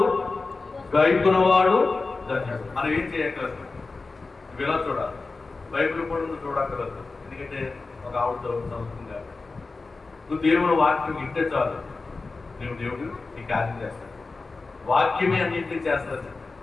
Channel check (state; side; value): quieter; right; 3.8 dB